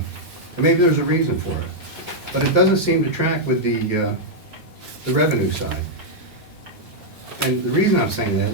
maybe there's a reason for it, but it doesn't seem to track with the revenue side. And the reason I'm saying that is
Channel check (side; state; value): both; normal; correlation -0.04